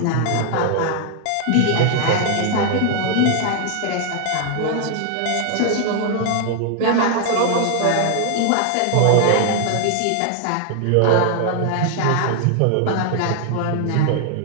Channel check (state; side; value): different; both; correlation 0.00